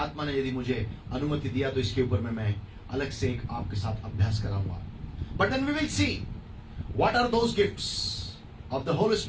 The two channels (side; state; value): both; identical; correlation 1.00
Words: ने यदि मुझे अनुमति दिया तो इसके ऊपर में मैं अलग से एक आपके साथ अभ्यास कराऊंगा. But then we will see what are those gifts of the Holy